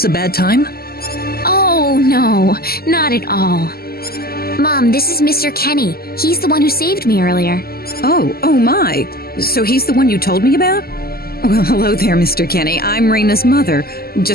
a bad time? Oh, no, not at all. Mom, this is Mr. Kenny. He's the one who saved me earlier. Oh my. So he's the one you told me about? Well, hello there, Mr. Kenny. I'm Reina's mother.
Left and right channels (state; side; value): late; right; 0.45 ms